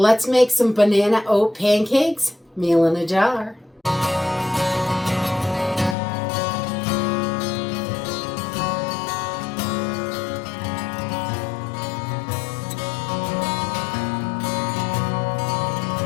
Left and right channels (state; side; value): drops out; right; at 6.0 s